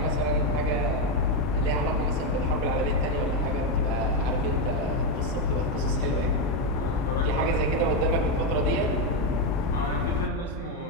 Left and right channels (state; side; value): normal; both; correlation 0.06